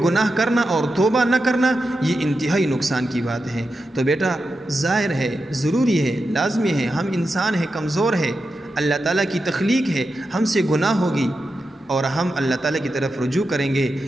کرنا اور توبہ نہ کرنا یہ انتہائی نقصان کی بات ہے۔ تو بیٹا ظاہر ہے، ضروری ہے، لازمی ہے، ہم انسان ہیں، کمزور ہے، اللہ تعالیٰ کی تخلیق ہے، ہم سے گناہ ہوگی، اور ہم اللہ تعالیٰ کی طرف رجوع کریں گے،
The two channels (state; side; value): normal; both; correlation 0.89